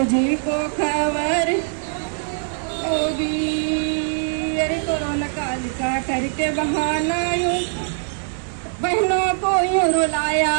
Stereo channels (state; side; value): silent; left; 64 dB below the other